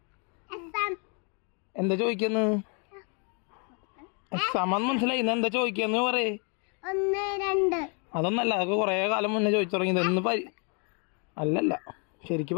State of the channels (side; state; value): right; quieter; 36.7 dB